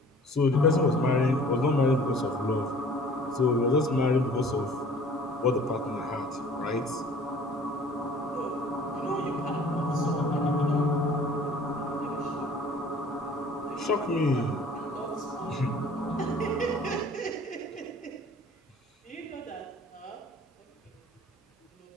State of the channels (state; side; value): normal; both; correlation 0.50